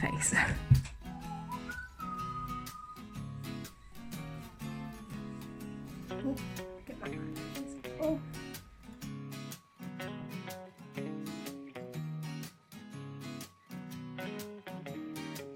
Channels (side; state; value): both; identical; correlation 1.00